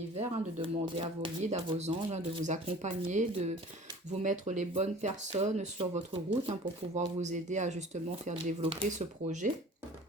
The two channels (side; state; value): both; normal; correlation 0.45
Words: hein, de demander à vos guides, à vos anges, hein, de vous accompagner, de vous mettre les bonnes personnes sur votre route hein, pour pouvoir vous aider à justement faire développer ce projet.